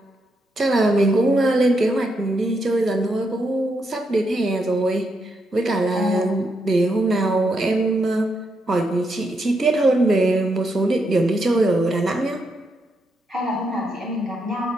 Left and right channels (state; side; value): normal; both; correlation 0.80